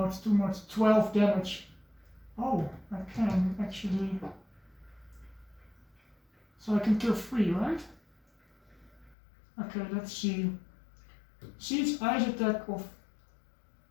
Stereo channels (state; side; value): drops out; right; at 9.2 s